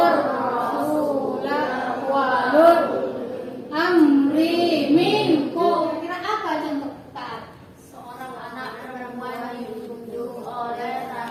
rasulah wa ulul amri minkum. Kira apa contoh taat? seorang anak perempuan ditunjuk oleh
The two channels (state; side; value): identical; both; correlation 1.00